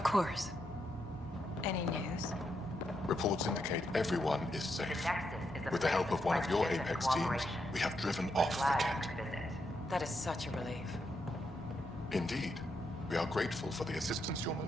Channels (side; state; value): both; normal; correlation 0.81